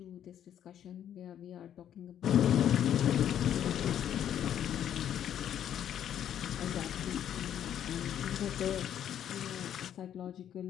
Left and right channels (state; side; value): quieter; right; 10.1 dB